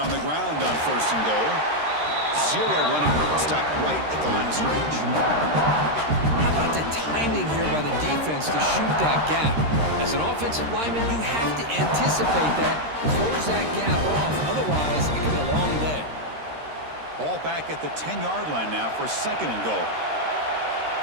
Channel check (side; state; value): left; late; 13 ms